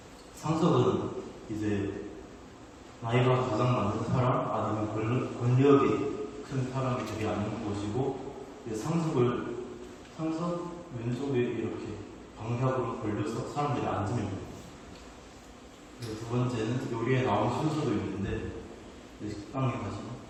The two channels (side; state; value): both; identical; correlation 1.00